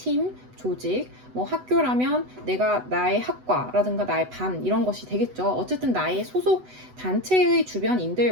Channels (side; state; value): left; late; 8.0 ms